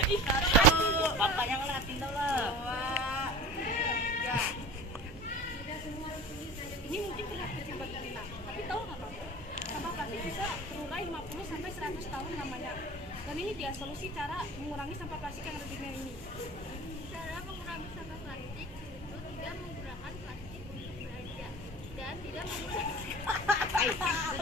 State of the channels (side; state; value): both; normal; correlation 0.38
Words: Bapaknya ngeliatin dulu. Ini mungkin terlihat kecil buat kita, tapi tahu nggak Pak? Sampah plastik bisa terurai 50 sampai 100 tahun namanya. Dan ini dia solusi cara mengurangi sampah plastik yang ada di dunia ini. cara mengurangi sampah plastik itu tidak menggunakan plastik untuk belanja dan tidak menggunakan